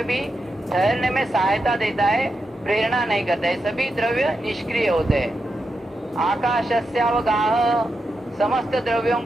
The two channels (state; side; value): normal; both; correlation 0.87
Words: भी ठहरने में सहायता देता है, प्रेरणा नहीं करता है। सभी द्रव्य निष्क्रिय होते हैं। आकाशस्यावगाह, समस्त द्रव्यों